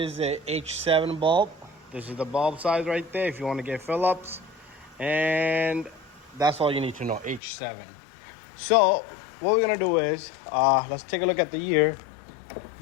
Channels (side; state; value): right; drops out; at 7.4 s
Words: a H7 bulb. This is the bulb size right there if you want to get Phillips. And that's all you need to know, H7. So what we're gonna do is, let's take a look at the year.